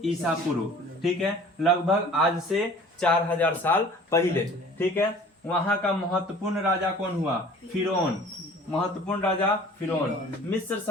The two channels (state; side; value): normal; both; correlation 0.47